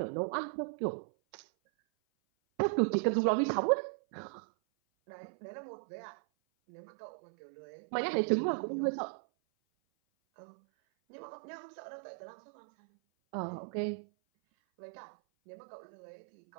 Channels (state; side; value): silent; left; 53 dB below the other